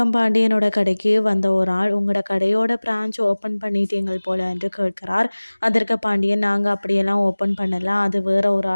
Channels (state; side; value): inverted; both; correlation -1.00